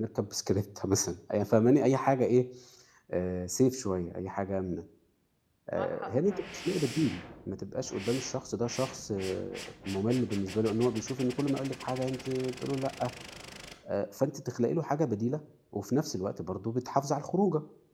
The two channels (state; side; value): identical; both; correlation 1.00